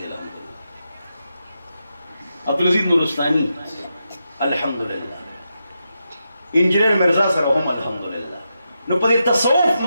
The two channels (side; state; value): both; inverted; correlation -0.86